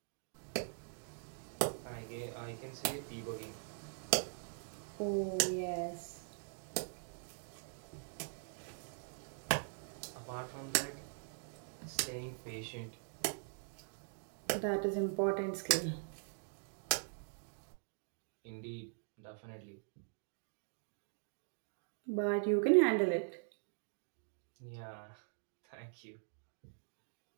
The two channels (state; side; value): silent; left; digital silence